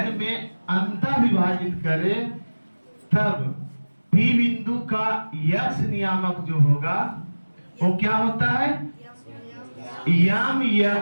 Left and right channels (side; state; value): both; inverted; correlation -1.00